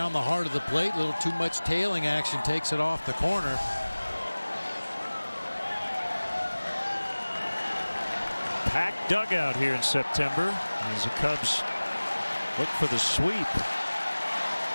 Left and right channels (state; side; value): inverted; both; correlation -1.00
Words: the heart of the plate. A little too much tailing action. Takes it off the corner. Packed dugout here in September as the Cubs look for the sweep.